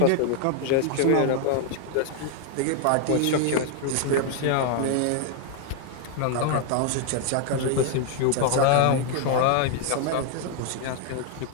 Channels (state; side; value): different; both; correlation 0.00